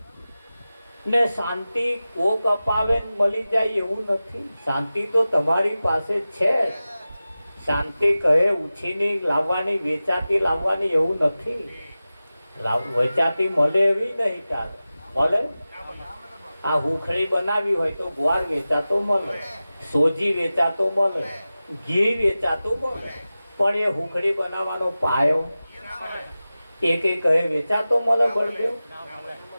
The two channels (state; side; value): inverted; both; correlation -0.96